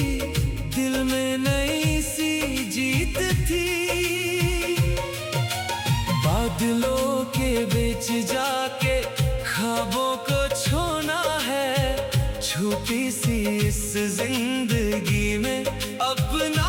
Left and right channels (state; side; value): identical; both; correlation 1.00